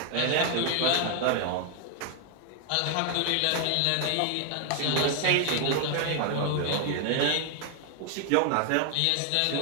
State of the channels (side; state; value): both; different; correlation 0.00